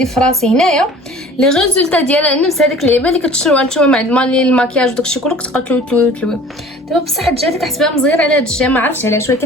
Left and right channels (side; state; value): both; normal; correlation 0.46